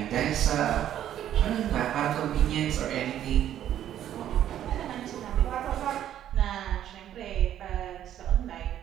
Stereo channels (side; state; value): left; quieter; 11.1 dB